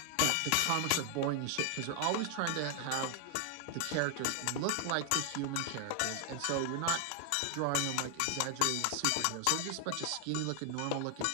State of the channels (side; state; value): both; different; correlation 0.00